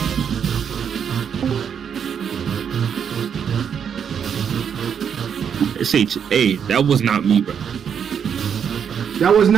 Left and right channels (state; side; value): quieter; left; 7.7 dB